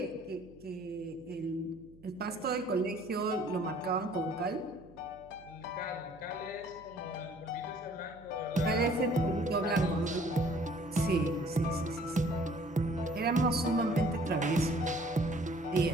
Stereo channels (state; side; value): noise; right; hum, 24 dB below the sound